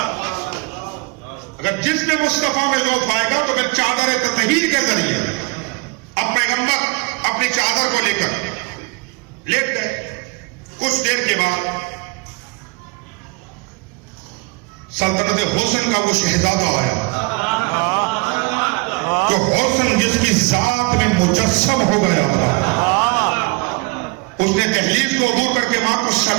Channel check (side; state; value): left; quieter; 28.6 dB